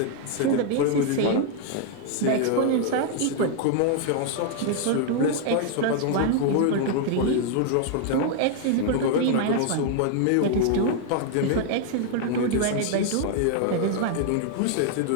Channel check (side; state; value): both; different; correlation 0.00